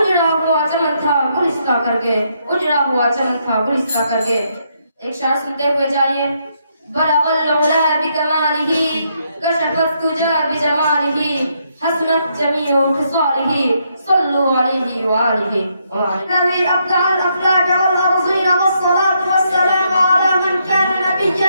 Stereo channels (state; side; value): inverted; both; correlation -0.76